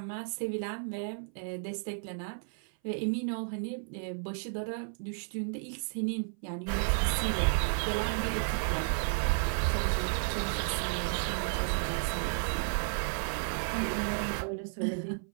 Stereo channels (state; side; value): silent; left; 56 dB below the other